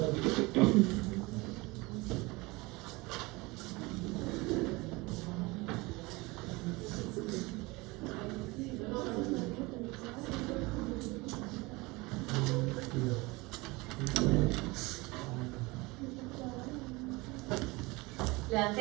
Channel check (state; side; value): quieter; left; 23.6 dB